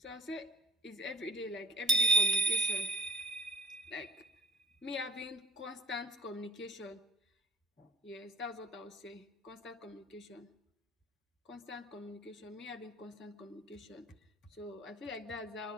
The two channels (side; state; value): both; normal; correlation 0.48